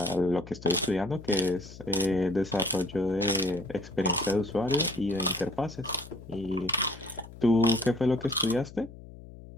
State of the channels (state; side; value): noise; left; hum, 17 dB below the sound